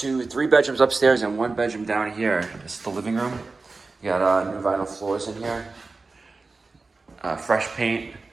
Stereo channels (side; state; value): left; quieter; 3.8 dB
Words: 3 bedrooms upstairs and 1 bedroom down here. This is the living room. You got new vinyl floors in here. Fresh paint,